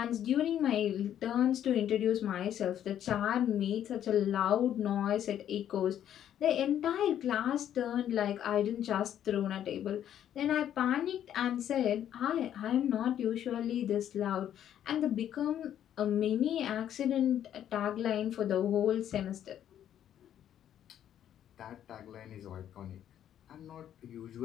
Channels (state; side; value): quieter; right; 10.5 dB